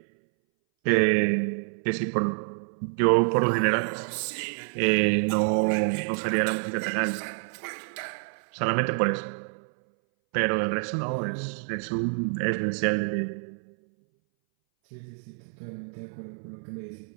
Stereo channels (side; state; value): left; silent; 60 dB below the other